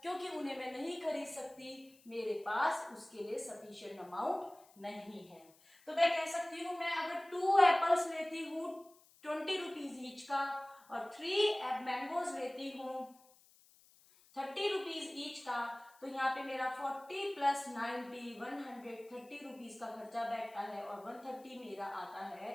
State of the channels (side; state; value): left; noise; hiss, 27 dB below the sound